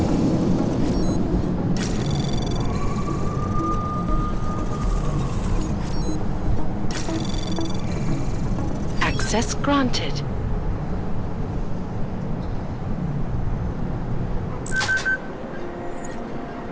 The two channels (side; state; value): both; identical; correlation 1.00